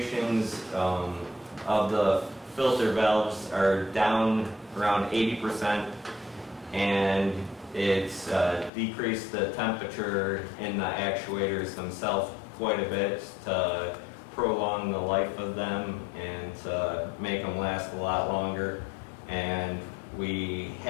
of the filter valves are down around 80%, and it's decreased the temperature in the actuators themselves quite a bit to prolong the life of them and to make them last a lot longer. And we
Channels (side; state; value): right; drops out; at 8.7 s